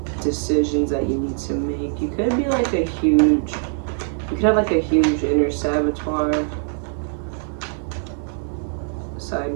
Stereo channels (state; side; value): silent; left; digital silence